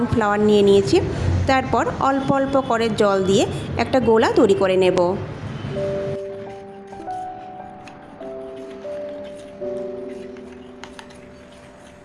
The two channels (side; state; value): both; identical; correlation 1.00